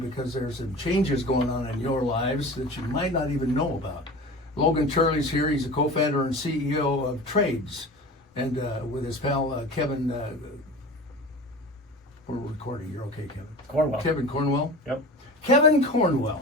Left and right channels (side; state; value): both; normal; correlation 0.35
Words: there's some changes going on in your lives that you might not even know about. Logan Turley's here. He's a co-founder and CEO of Tradez, and with his pal Kevin. We're recording. You're okay, Kevin? Cornwell. Kevin Cornwell? Yep. Kevin